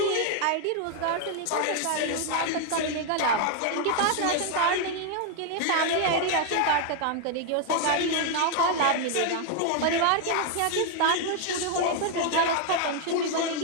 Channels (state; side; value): different; both; correlation 0.00